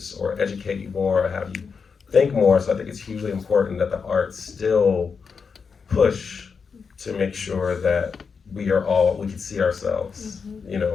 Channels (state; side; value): quieter; right; 5.6 dB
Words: or educate you more or have you think more. So I think it's hugely important that the arts still push to make sure that we can see ourselves, you